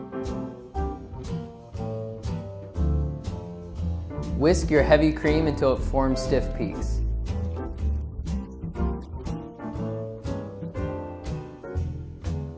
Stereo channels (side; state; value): both; identical; correlation 1.00